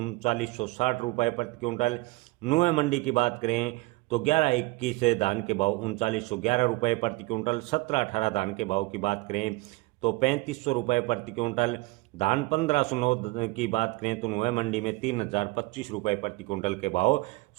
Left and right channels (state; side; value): quieter; left; 22.4 dB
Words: रुपये प्रति क्विंटल। नुआ मंडी की बात करें तो 1121 धान के भाव 3911 रुपये प्रति क्विंटल। 1718 धान के भाव की बात करें तो 3500 रुपये प्रति क्विंटल। धान 1509 की बात करें तो नुआ मंडी में 3025 रुपये प्रति क्विंटल के भाव